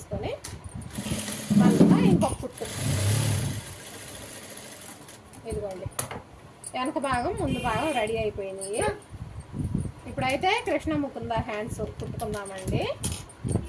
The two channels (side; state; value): both; identical; correlation 1.00